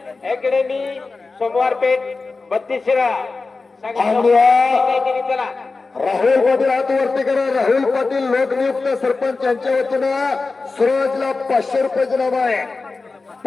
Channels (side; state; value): right; quieter; 3.9 dB